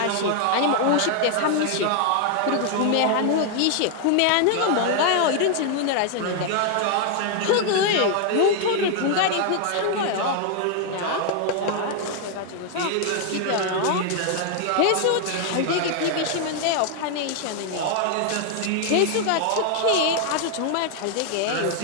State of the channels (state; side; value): different; both; correlation 0.00